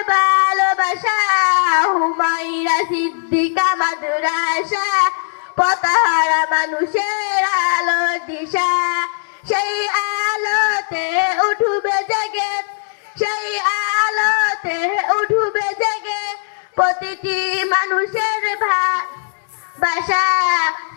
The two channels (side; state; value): right; silent; 67 dB below the other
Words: ভালোবাসা। হুমায়রা সিদ্দিকা মাদ্রাসা, পথহারা মানুষের আলোর দিশা। সেই আলোতে উঠবে জেগে, সেই আলোতে উঠবে জেগে প্রতিটি মানুষের ভালোবাসা।